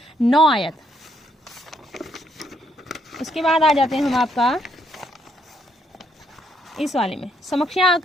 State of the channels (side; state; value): both; normal; correlation 0.72